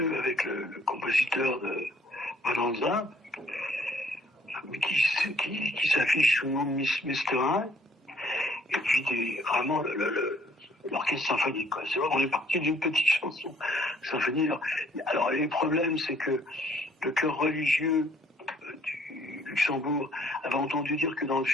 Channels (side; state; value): both; normal; correlation 0.62